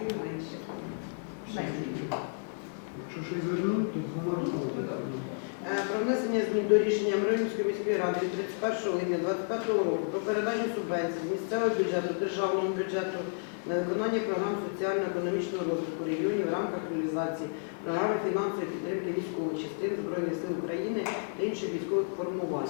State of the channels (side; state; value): right; silent; digital silence